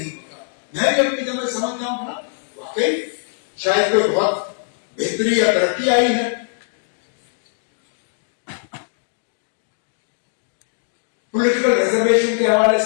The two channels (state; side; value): silent; right; digital silence